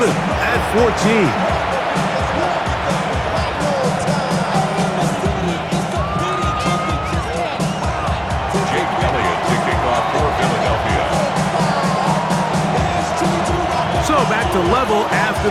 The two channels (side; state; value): both; identical; correlation 1.00